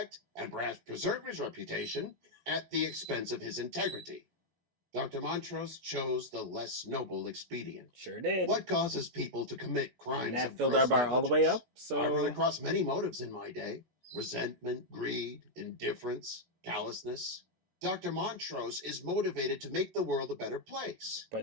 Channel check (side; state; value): left; late; 16 ms